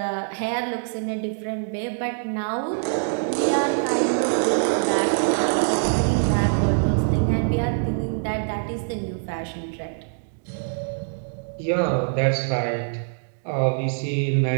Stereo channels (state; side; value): silent; left; digital silence